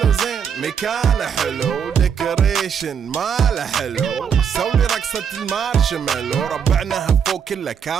زين مكانه حلو ديكوريشن ماله حلو سولي رقصة المارشميلو ربعناها فوق كله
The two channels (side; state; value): left; quieter; 7.3 dB